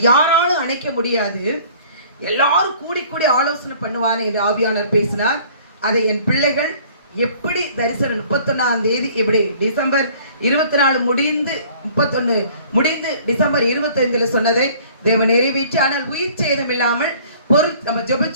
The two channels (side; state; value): both; inverted; correlation -0.53